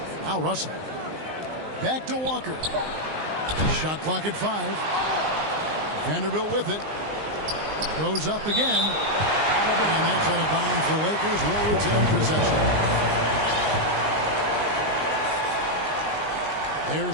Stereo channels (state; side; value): late; left; 19 ms